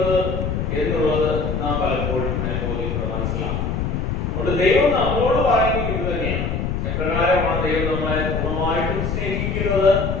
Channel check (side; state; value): left; noise; rumble, 1 dB below the sound